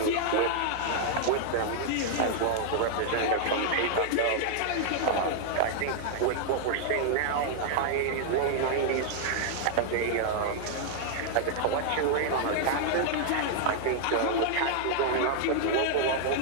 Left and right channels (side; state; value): both; different; correlation -0.01